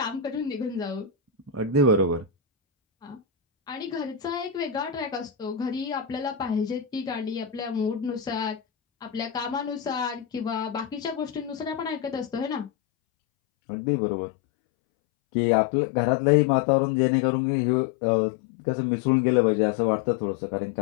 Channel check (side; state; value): right; drops out; at 12.7 s